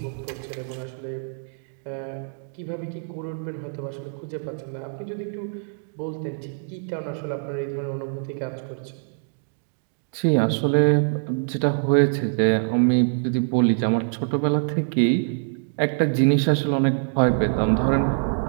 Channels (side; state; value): left; silent; digital silence